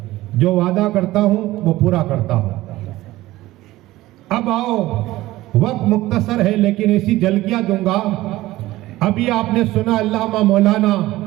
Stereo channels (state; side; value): quieter; left; 17.1 dB